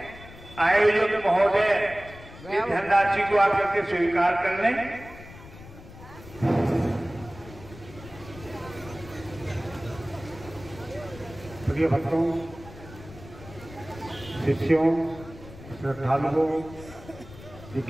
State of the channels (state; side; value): noise; left; rumble, 17 dB below the sound